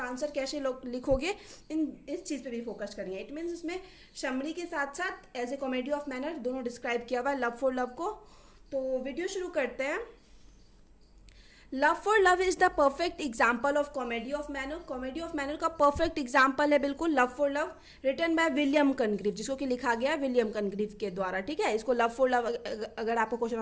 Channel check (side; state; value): both; identical; correlation 1.00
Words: आंसर कैसे लिखोगे, इस चीज़ पे भी फोकस करेंगे। इट मीन्स इसमें समरी के साथ साथ as a comedy of manner दोनों डिस्क्राइब किया हुआ है लव फॉर लव को। तो वीडियो शुरू करते हैं। Love for love is the perfect example of comedy of manner. Comedy of manner का परफेक्ट एग्जाम्पल है बिल्कुल love for love, written by William Congreve, जिसको कि लिखा गया विलियम कनग्रीव के द्वारा। ठीक है, इसको लव फॉर लव अगर आपको क्वेश्चन